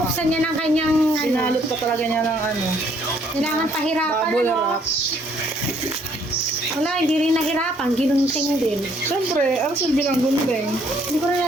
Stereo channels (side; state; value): both; normal; correlation 0.66